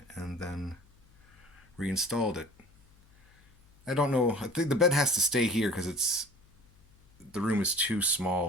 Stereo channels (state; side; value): noise; left; hum, 29 dB below the sound